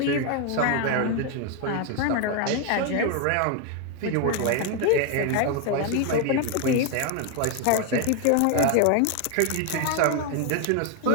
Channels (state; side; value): different; both; correlation 0.01